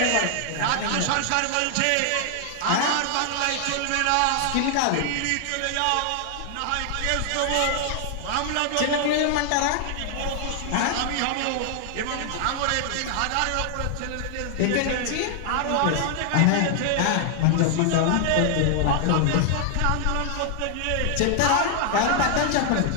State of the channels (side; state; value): both; different; correlation 0.00